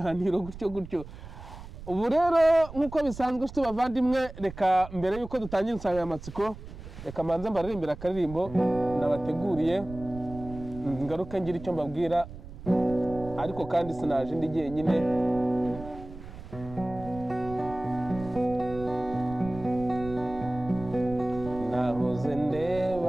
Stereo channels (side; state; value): right; noise; rumble, 14 dB below the sound